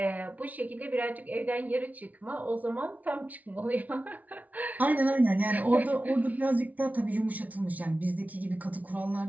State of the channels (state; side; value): late; left; 0.073 ms